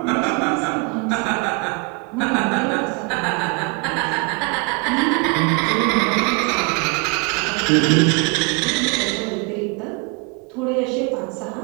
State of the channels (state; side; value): quieter; left; 32.0 dB